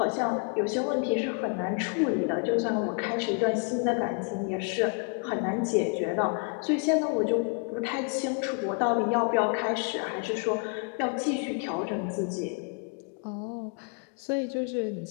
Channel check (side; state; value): right; quieter; 37.9 dB